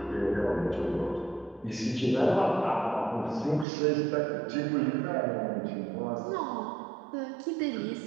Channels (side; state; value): left; drops out; at 3.7 s